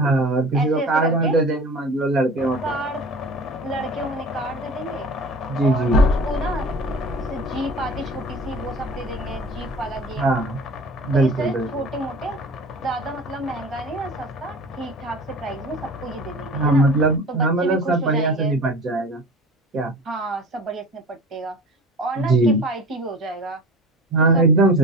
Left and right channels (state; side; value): normal; both; correlation 0.39